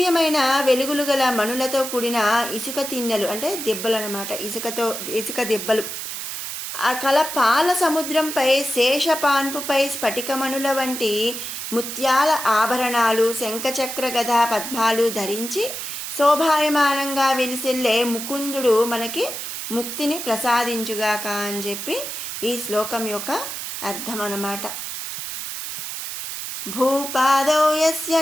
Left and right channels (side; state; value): right; noise; hiss, 6 dB below the sound